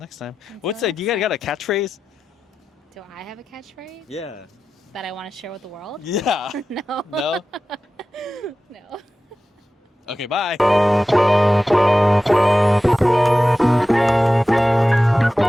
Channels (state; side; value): normal; both; correlation 0.94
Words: time. What's that? You got a catchphrase? Do I have a catchphrase? Yeah. That I want to share with the world? Yeah. No. No? No. Okay, bye.